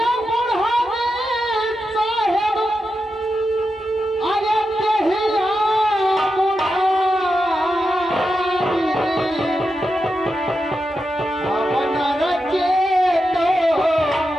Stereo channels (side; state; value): both; normal; correlation 0.88